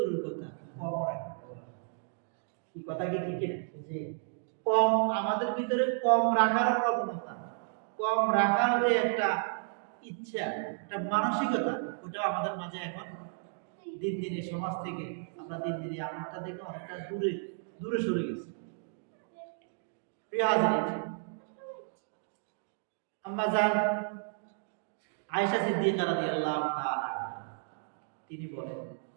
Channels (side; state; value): left; silent; digital silence